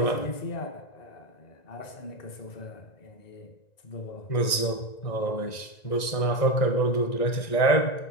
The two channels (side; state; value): right; late; 1.9 ms